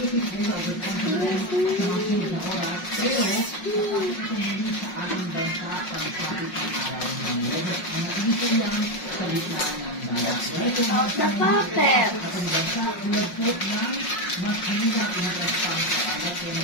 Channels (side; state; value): right; late; 5.5 ms